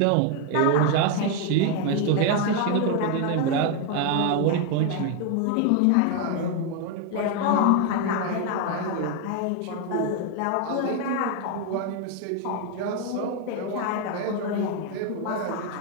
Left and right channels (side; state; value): both; different; correlation 0.01